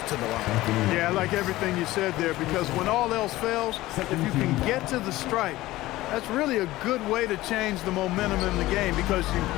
to the line. Yeah, I like everything you said there, because when all else fails, if you can get to the stripe, that's really a good way to change the momentum in the game, because you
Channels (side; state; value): right; quieter; 17.3 dB